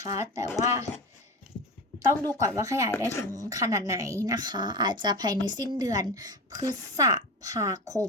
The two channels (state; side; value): normal; both; correlation 0.25